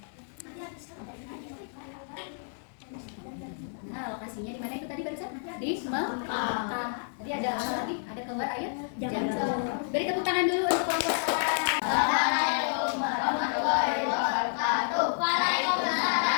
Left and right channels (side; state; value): right; silent; 58 dB below the other